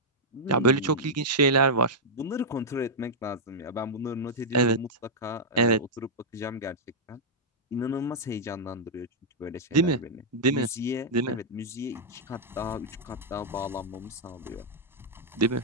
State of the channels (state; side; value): normal; both; correlation -0.07